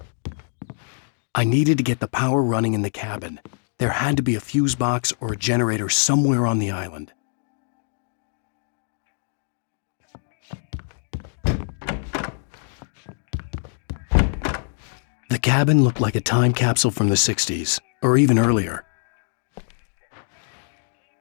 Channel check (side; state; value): right; silent; digital silence